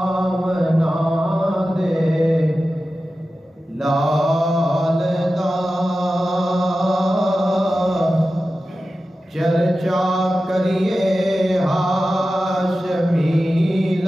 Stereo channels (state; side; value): normal; both; correlation 0.94